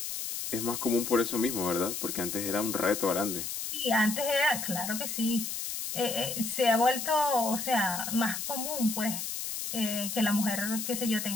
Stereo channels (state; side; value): noise; left; hiss, 4 dB below the sound